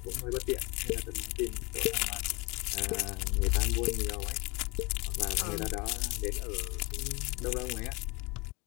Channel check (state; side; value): quieter; right; 25.8 dB